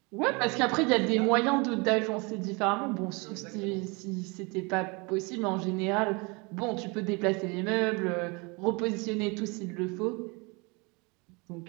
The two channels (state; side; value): quieter; left; 28.9 dB